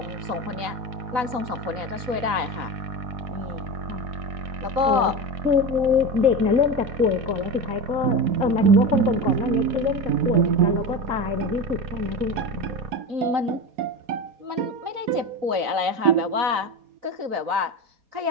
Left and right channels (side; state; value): left; late; 3.9 ms